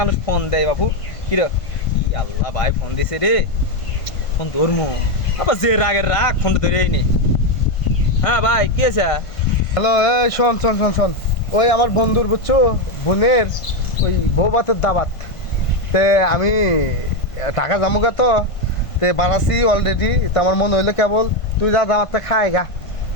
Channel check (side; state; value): right; late; 1.5 ms